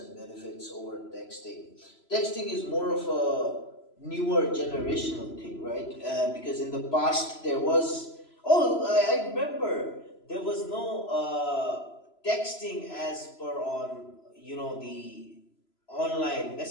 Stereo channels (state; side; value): late; right; 3.0 ms